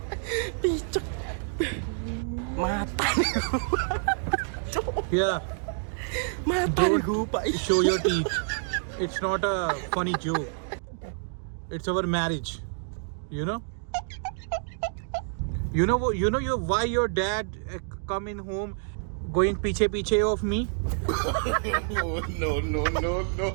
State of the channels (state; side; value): silent; left; digital silence